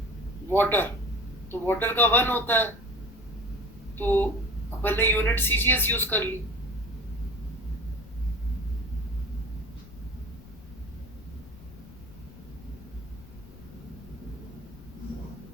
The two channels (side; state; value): left; noise; rumble, 19 dB below the sound